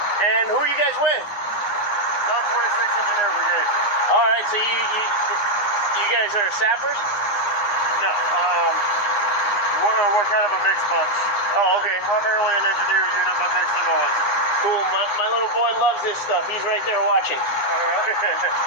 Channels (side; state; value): right; late; 9.7 ms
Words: And who are you guys with? 146 Engineer Brigade. All right, so you guys are sappers? No, we're kind of a mixed bunch. Oh, okay. Primarily an engineer unit, but mixed in all. Cool. My little boy loves this stuff. He's right there watching. All right.